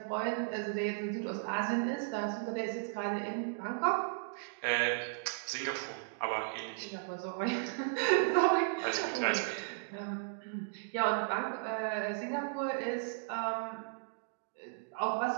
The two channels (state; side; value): silent; left; digital silence